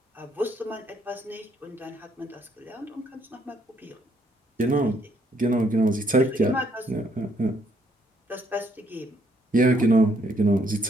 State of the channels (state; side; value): normal; both; correlation 0.69